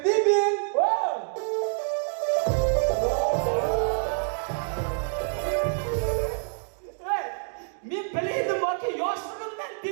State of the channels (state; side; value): silent; left; 60 dB below the other